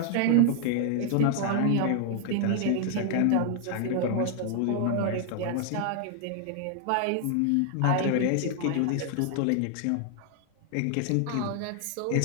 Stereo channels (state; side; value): different; both; correlation 0.00